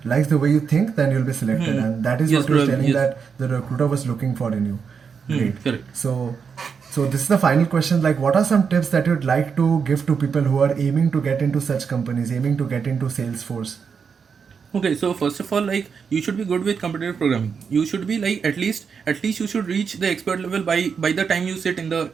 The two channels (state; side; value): quieter; left; 6.1 dB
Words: likes the way you think, then you'll be selected. And that is Yes, what you're probably, telling yes. that the recruiter was looking for in you. Great. Correct. So So this is the final question. Like, what are some tips that you'd like to give to people who are aiming to get into such companies, aiming to get into Salesforce? Okay, so first of all, like you should be good with competitive programming. You should be like at least you should reach the expert level by the time you sit in the